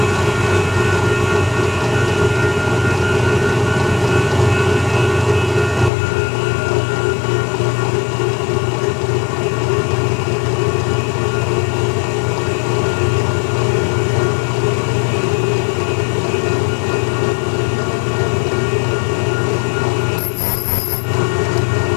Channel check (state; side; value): drops out; right; at 5.9 s